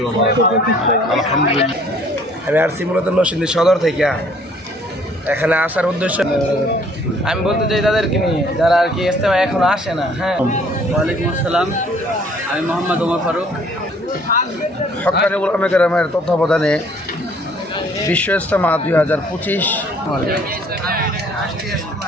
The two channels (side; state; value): both; normal; correlation 0.58